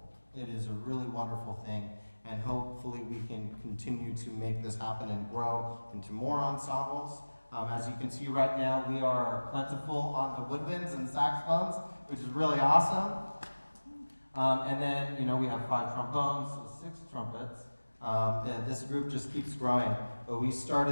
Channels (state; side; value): inverted; both; correlation -1.00